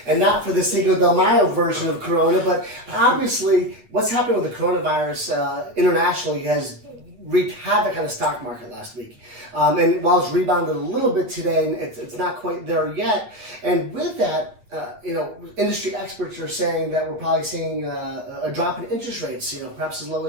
and not for the Cinco de Mayo version of Corona, but obviously what's happening with the coronavirus internationally has wreaked havoc on the stock market last week. And while it's rebounded a little bit today, it's not quite there yet. And with that, industry experts are saying that we're probably seeing a drop in interest rates, perhaps as low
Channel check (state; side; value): late; left; 9.3 ms